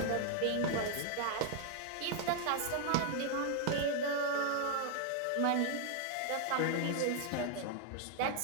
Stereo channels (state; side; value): different; both; correlation 0.00